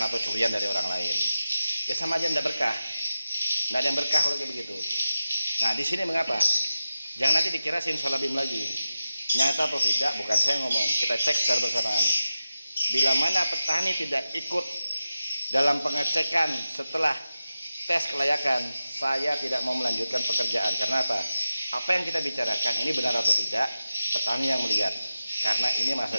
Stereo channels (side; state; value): both; inverted; correlation -0.93